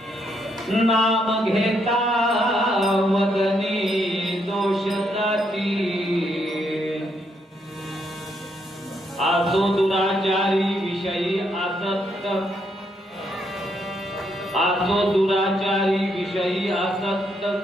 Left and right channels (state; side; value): normal; both; correlation 0.75